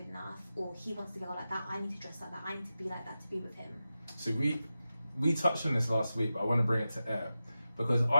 enough, or he wants to go like that, I need to dress like that, I need to be like that to be with him. So we touched on this last week, but I want to bring it to air because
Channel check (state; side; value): inverted; both; correlation -0.93